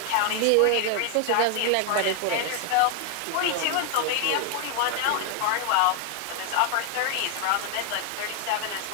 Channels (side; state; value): both; different; correlation 0.00